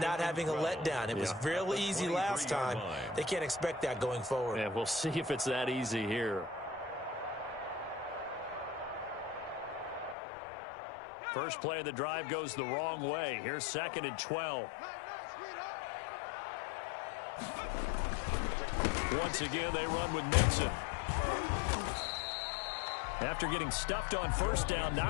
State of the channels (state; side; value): drops out; right; at 10.2 s